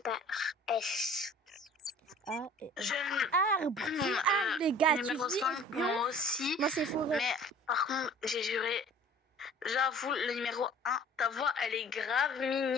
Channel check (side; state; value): both; normal; correlation 0.49